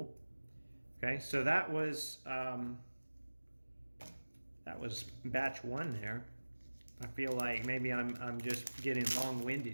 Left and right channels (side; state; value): both; inverted; correlation -1.00